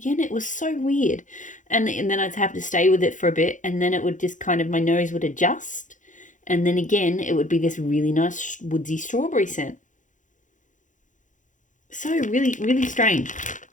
It was so weird. And then I'd have to stay with it for a bit, and then it would just my nose would adjust. And then again, it would be this really nice woodsy strawberry scent. So really strange.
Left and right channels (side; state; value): right; late; 0.37 ms